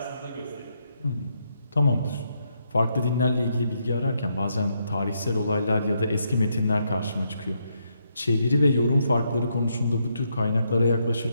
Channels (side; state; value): both; inverted; correlation -0.78